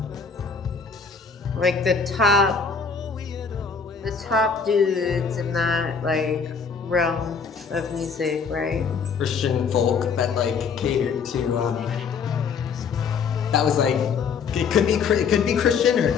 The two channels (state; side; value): quieter; right; 5.7 dB